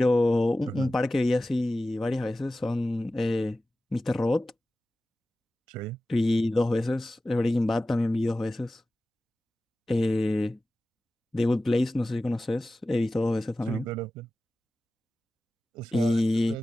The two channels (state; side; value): normal; both; correlation 0.96